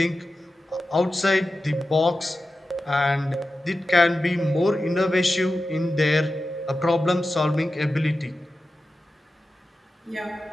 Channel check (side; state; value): both; normal; correlation 0.93